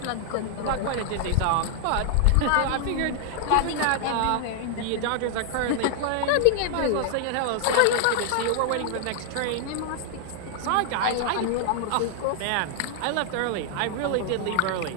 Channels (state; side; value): different; both; correlation 0.00